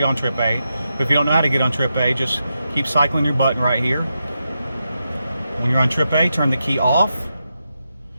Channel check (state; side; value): inverted; both; correlation -0.87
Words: on trip A. But if you don't know how to get on trip A, just keep cycling your button right here. When you're on trip A, turn the key off.